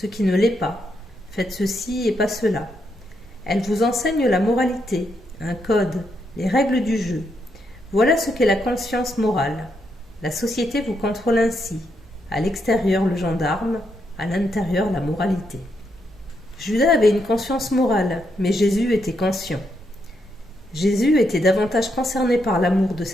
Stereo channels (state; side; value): normal; both; correlation 0.79